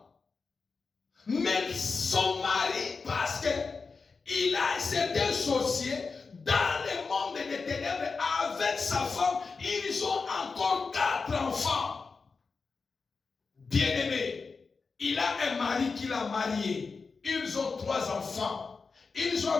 Mais son mari, parce qu'il a été associé dans le monde des ténèbres avec sa femme, ils ont encore 4 enfants. Bien-aimés, il a un mari qu'il a marié. Ils ont 3 enfants. Ils ont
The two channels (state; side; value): quieter; right; 4.6 dB